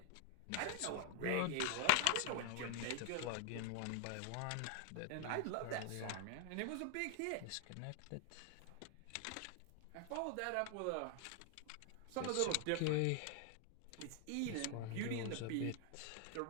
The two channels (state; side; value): different; both; correlation 0.00